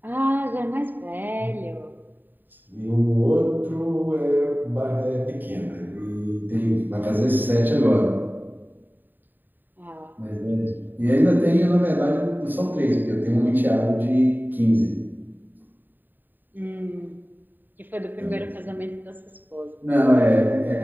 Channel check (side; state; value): left; late; 0.091 ms